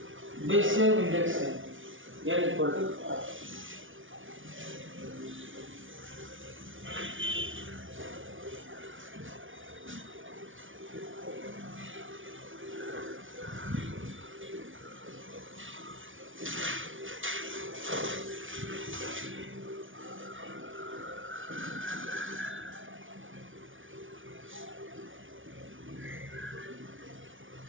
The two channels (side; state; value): left; late; 0.57 ms